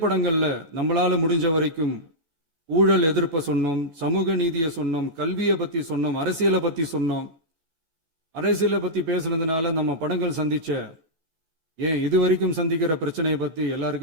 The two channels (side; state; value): left; late; 14 ms